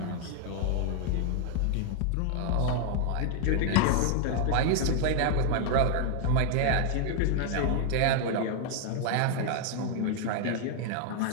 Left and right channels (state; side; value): different; both; correlation 0.00